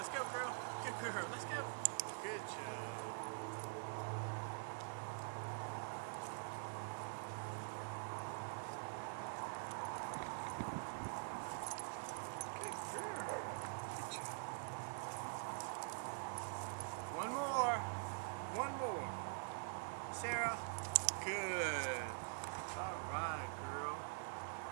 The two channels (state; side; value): silent; left; digital silence